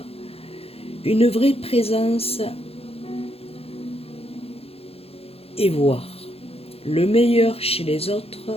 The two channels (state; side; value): late; right; 0.29 ms